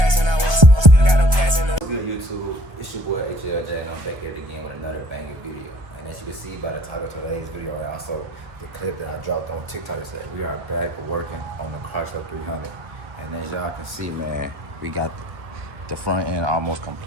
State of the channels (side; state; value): left; late; 1.3 ms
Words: and I want some. Still got them passing. What's good, YouTube? It's your boy HLJ, and I'm back here again with another banging video. And as you can see by the title of today's video, and also the clip that I dropped on TikTok, is that we are back working on the Chrysler 300. And as y'all can see, man, we got the front end almost